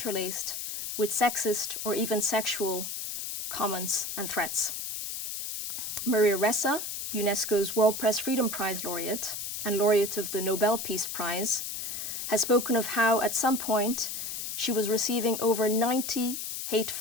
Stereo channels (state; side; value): noise; left; hiss, 5 dB below the sound